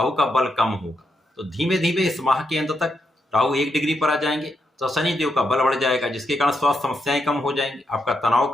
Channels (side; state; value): both; normal; correlation 0.82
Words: का बल कम होगा। तो धीमे धीमे इस माह के अंत तक राहु 1 डिग्री पर आ जाएंगे, तो शनिदेव का बल बढ़ जाएगा, जिसके कारण स्वास्थ्य समस्याएं कम हो जाएंगी, आपका तनाव